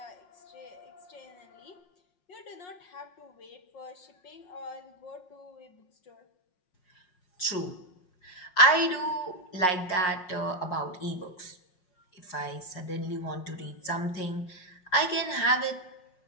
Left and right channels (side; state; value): right; late; 5.5 ms